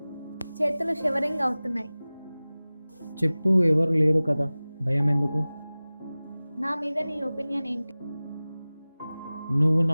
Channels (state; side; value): inverted; both; correlation -0.98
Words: చేతులు షివరింగ్ అవుతున్నాయి. చెప్పు, ఎవరు లేరు కదా, భయం ఎందుకు? నా మీద నీ ఒపీనియన్ ఏంటి? నువ్వు